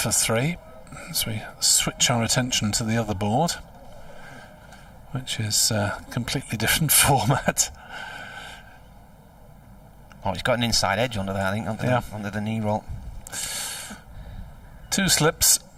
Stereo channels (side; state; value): both; identical; correlation 1.00